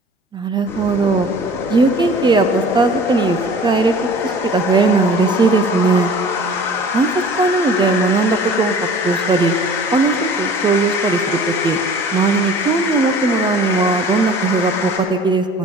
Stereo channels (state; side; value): normal; both; correlation 0.46